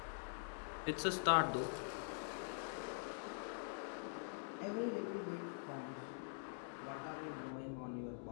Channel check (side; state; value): right; silent; digital silence